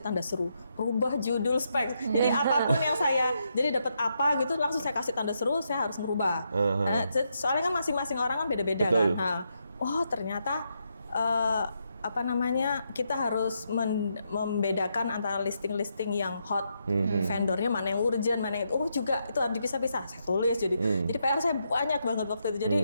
tanda seru, rubah judul spek. Jadi apapun yang saya, jadi dapat apa gitu, langsung saya kasih tanda seru, saya harus merubah. Nah, soalnya kan masing-masing orang kan beda-beda kan. Nah, oh ternyata kita harus membedakan antara listing-listing yang hot, vendornya mana yang urgent, mana yang juga itu harus dipisah-pisah. Saya tulis jadi PR saya banyak banget waktu itu. Jadi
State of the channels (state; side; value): inverted; both; correlation -0.81